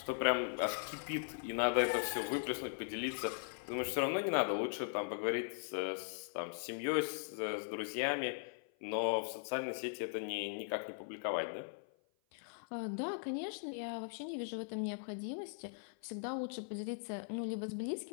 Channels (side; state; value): right; silent; 51 dB below the other